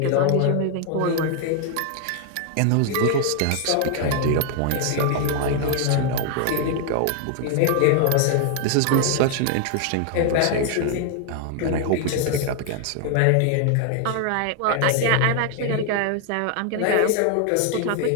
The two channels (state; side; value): different; both; correlation 0.00